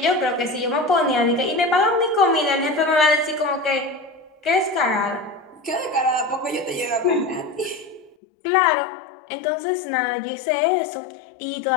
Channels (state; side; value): drops out; right; at 8.2 s